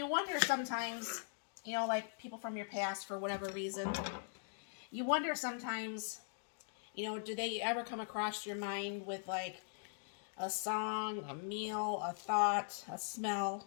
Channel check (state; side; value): silent; right; digital silence